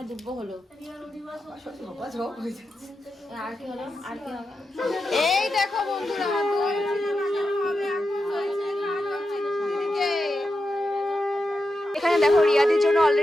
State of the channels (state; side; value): normal; both; correlation 0.89